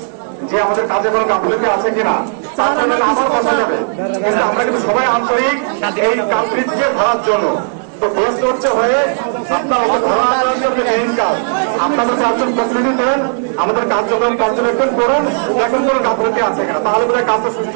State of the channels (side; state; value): left; silent; digital silence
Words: যে আমাদের কাজে কোনো গাফিলতি আছে কিনা, তারপরে আবার বসা যাবে। কিন্তু আমরা কিন্তু সবাই আন্তরিক এই কালপ্রিটকে ধরার জন্য। তো বেস্ট হচ্ছে হয়ে আপনারা মেইন কাজ আপনাদের 4 জন প্রতিনিধি দেন, আমাদের কার্যক্রম পর্যবেক্ষণ করুন এখন কোনো গাফিলতি আছে কিনা, তাহলে বোধহয় কাজটা